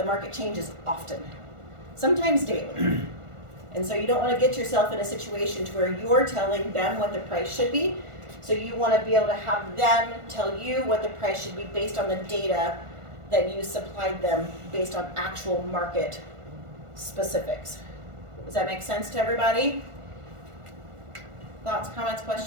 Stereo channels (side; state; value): left; late; 1.4 ms